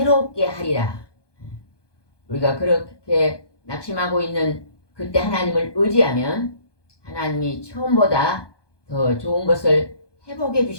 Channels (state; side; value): late; right; 1.2 ms